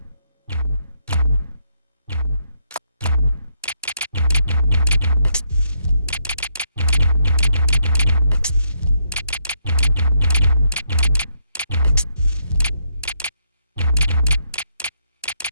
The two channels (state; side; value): inverted; both; correlation -0.76